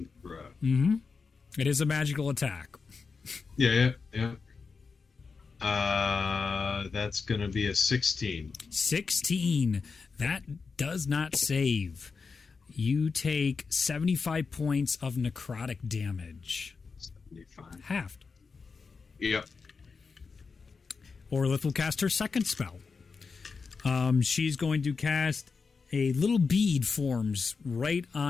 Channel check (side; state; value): right; quieter; 4.9 dB